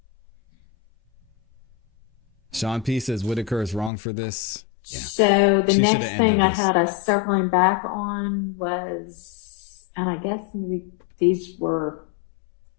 Sean P says Whitaker is wrong for this. Yeah. So the She next shoulda thing ended I this. had us circling back on was, and I guess maybe these were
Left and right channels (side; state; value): right; drops out; at 3.9 s